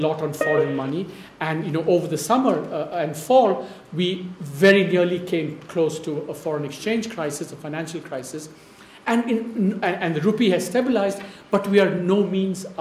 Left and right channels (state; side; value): identical; both; correlation 1.00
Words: on foreign money. And, you know, over the summer and fall, we very nearly came close to a foreign exchange crisis, a financial crisis. And the rupee has stabilized, but we are no means